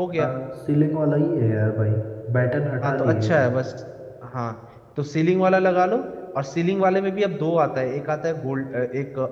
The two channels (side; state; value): both; identical; correlation 1.00